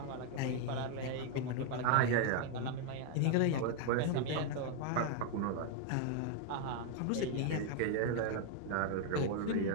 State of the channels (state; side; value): different; both; correlation 0.00